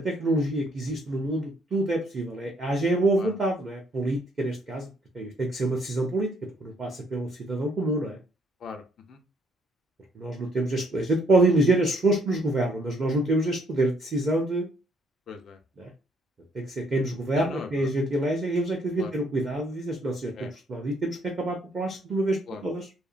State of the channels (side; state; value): both; normal; correlation 0.68